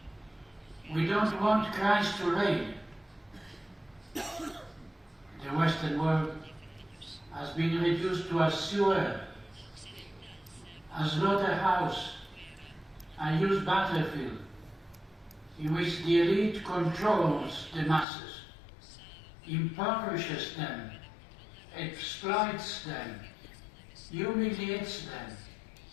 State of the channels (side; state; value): right; drops out; at 18.1 s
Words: We don't want Christ to reign. The Western world has been reduced to a sewer, a slaughterhouse, a used battlefield, in which the elite controls the masses, impoverishes them, exploits them, humiliates them,